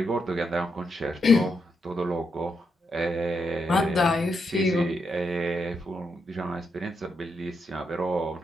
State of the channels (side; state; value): both; normal; correlation 0.81